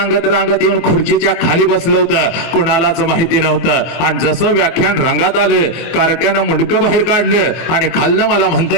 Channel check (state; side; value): late; right; 23 ms